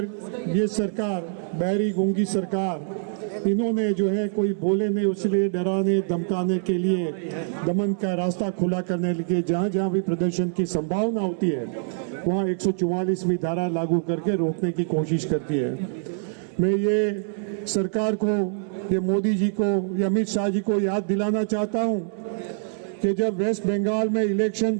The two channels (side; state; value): left; silent; 62 dB below the other